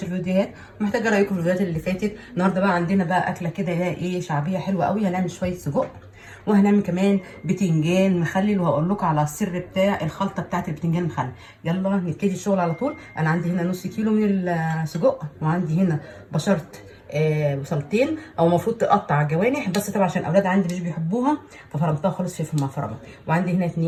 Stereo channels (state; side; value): identical; both; correlation 1.00